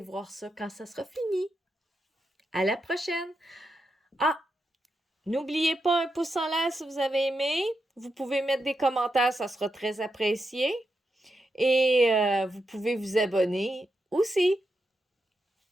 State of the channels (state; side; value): normal; both; correlation 0.86